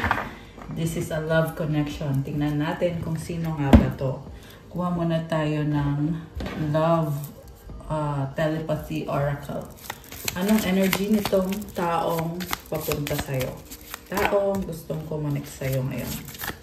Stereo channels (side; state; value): both; identical; correlation 1.00